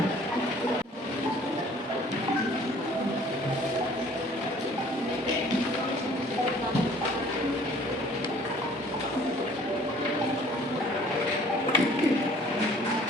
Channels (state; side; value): normal; both; correlation 0.53